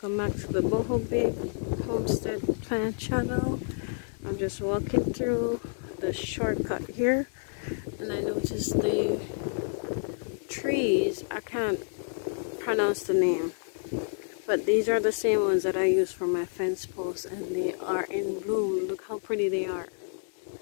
back to the Boho Babe Homestead Plant channel. I'm just walking through the shortcut here and I noticed the trees. I can't pronounce the name, but these are the same ones that I use for my fence posts and they are in bloom. Look how pretty they are.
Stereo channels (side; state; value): right; silent; digital silence